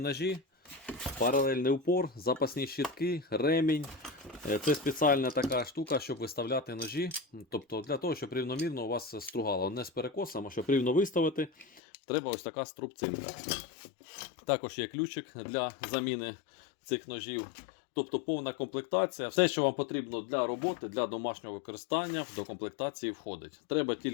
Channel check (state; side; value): drops out; right; at 11.8 s